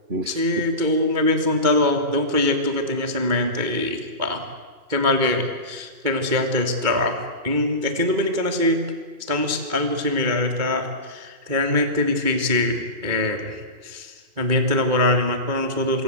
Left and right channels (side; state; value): left; late; 2.3 ms